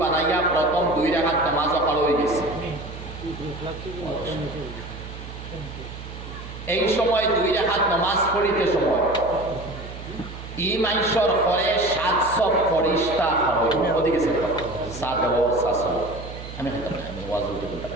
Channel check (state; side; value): noise; right; hum, 12 dB below the sound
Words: বানাইয়া প্রথম 2 রাকাত নামাজ পড়া হয়ে গেছে এই সময় 2 রাকাত নামাজ পড়িতে সময় ই মাইশর পরে 700 ফরিস্তা হয় ওদিকে গেছে 700 আমি ওয়াজ উঠে বলতে